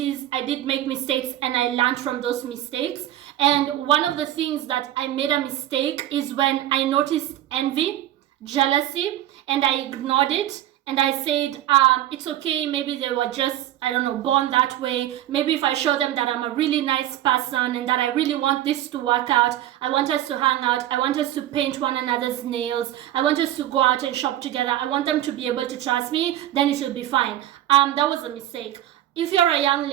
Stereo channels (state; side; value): quieter; left; 13.0 dB